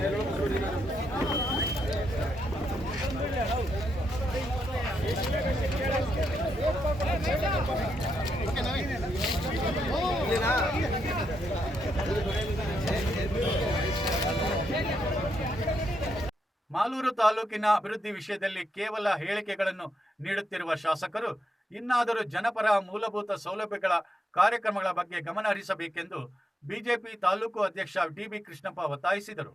ಮಾಲೂರು ತಾಲೂಕಿನ ಅಭಿವೃದ್ಧಿ ವಿಷಯದಲ್ಲಿ ಕೇವಲ ಹೇಳಿಕೆಗಳನ್ನು ನೀಡುತ್ತಿರುವ ಶಾಸಕರು ಇನ್ನಾದರೂ ಜನಪರ ಮೂಲಭೂತ ಸೌಲಭ್ಯಗಳ ಕಾರ್ಯಕ್ರಮಗಳ ಬಗ್ಗೆ ಗಮನ ಹರಿಸಬೇಕೆಂದು ಬಿಜೆಪಿ ತಾಲೂಕು ಅಧ್ಯಕ್ಷ ಡಿ.ಬಿ. ಕೃಷ್ಣಪ್ಪ ಒತ್ತಾಯಿಸಿದರು.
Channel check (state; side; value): normal; both; correlation 0.81